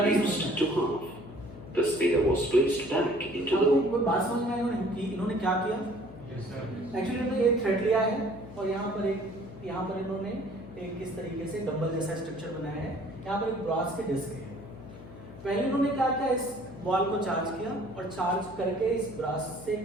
to half. The sphere was placed back into the. कोई बात समझ में आई इन्होंने क्या किया? एक्चुअली इन्होंने एक थ्रेड लिया है और यहाँ पर इन्होंने एक किस तरीके से डंबल जैसा स्ट्रक्चर बनाया है। यहाँ पर एक ब्रास के डिस्क है। पहले इन्होंने क्या किया, इस बॉल को चार्ज किया और चार्ज करके इस ब्रास से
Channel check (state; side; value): noise; left; hum, 15 dB below the sound